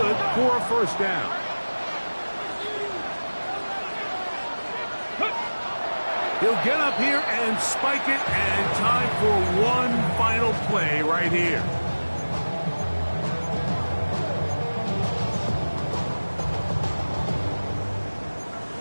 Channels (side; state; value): both; inverted; correlation -1.00